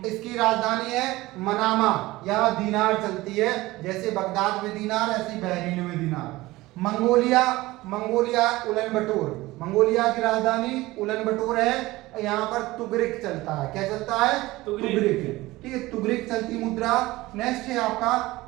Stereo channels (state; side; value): quieter; left; 19.1 dB